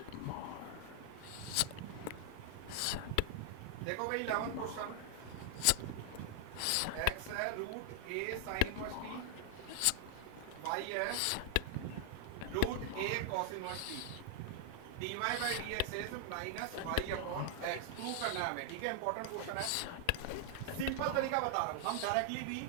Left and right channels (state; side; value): different; both; correlation 0.00